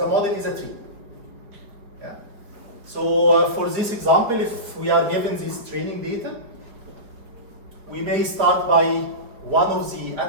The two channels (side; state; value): left; late; 4.9 ms